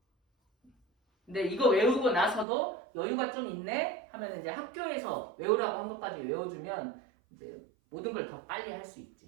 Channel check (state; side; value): drops out; left; at 2.5 s